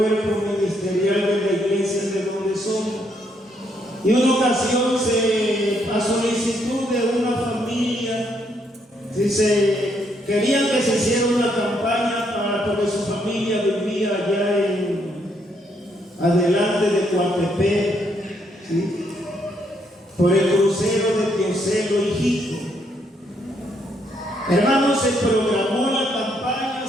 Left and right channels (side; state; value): both; normal; correlation 0.73